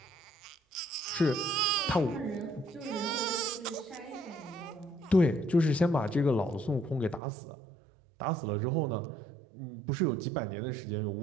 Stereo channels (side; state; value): left; drops out; at 7.2 s